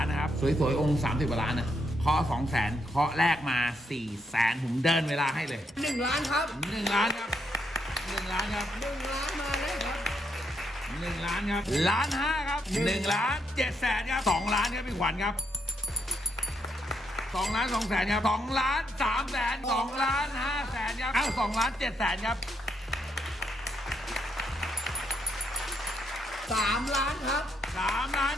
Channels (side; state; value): both; normal; correlation 0.77